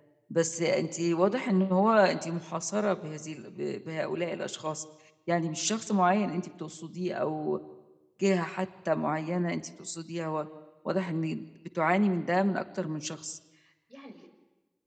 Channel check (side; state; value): both; identical; correlation 1.00